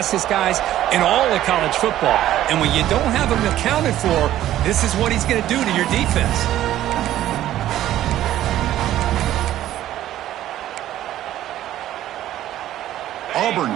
guys in all of college football. And when you don't have him accounted for, this is what he's going to do to your defense. Auburn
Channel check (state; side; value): quieter; left; 13.0 dB